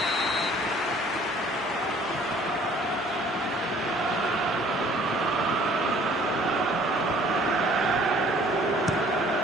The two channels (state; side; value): normal; both; correlation 0.55